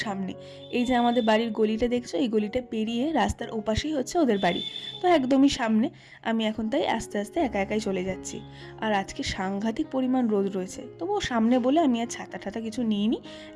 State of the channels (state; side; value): identical; both; correlation 1.00